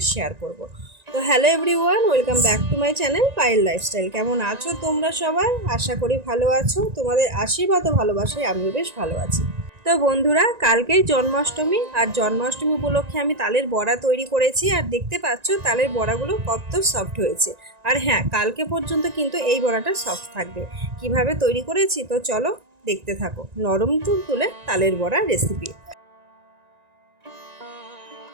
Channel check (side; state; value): left; late; 1.9 ms